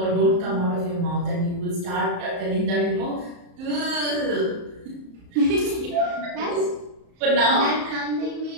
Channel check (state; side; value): late; left; 34 ms